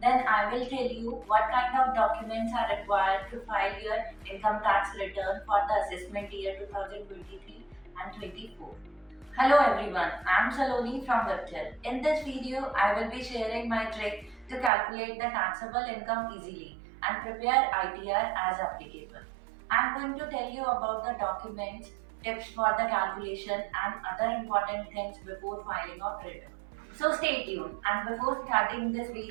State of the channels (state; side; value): drops out; left; at 14.7 s